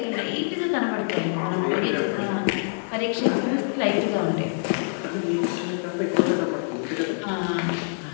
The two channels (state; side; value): silent; right; 61 dB below the other